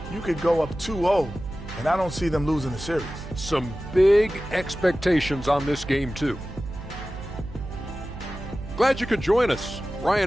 You could go up 2-0, and I don't see them losing the series. Some big expectations on this game, too. Glad you could join us.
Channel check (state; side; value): noise; right; hum, 12 dB below the sound